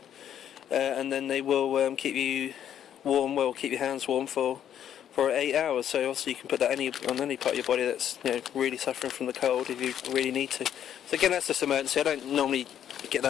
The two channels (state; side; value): quieter; right; 9.9 dB